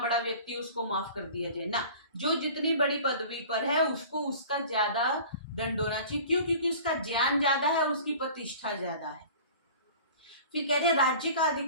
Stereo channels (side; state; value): both; inverted; correlation -0.43